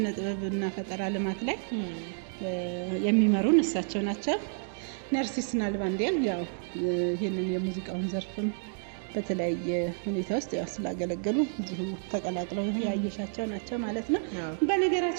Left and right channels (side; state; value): left; silent; 58 dB below the other